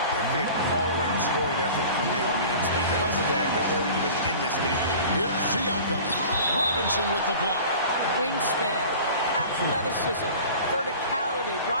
all-around scoring effort from him. I mean, it's because of that they're even in this game. Here's Siakam. Robinson with the block. Wingspan, athleticism, verticality.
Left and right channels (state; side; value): inverted; both; correlation -0.41